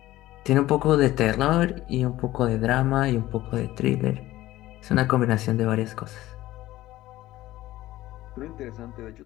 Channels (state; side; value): quieter; right; 16.0 dB